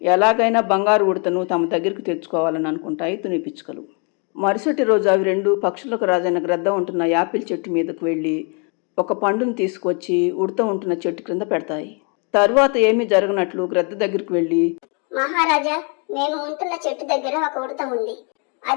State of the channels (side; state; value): right; quieter; 36.2 dB